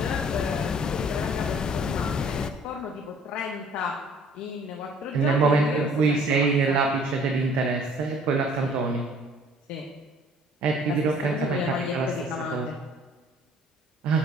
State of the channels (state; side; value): normal; both; correlation 0.55